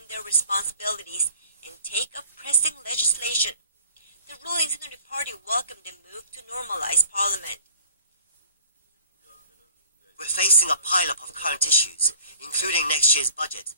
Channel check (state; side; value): inverted; both; correlation -0.52